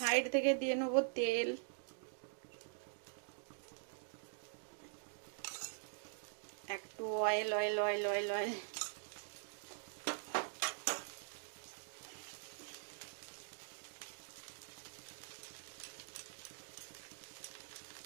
থেকে দিয়ে নেবো তেল। একটু oil oil oil oil oil.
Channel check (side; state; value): left; silent; digital silence